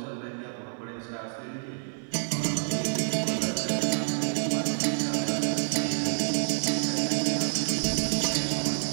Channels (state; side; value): silent; left; 59 dB below the other